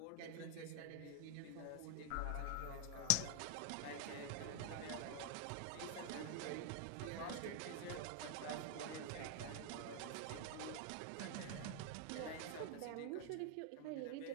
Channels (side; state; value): both; different; correlation 0.00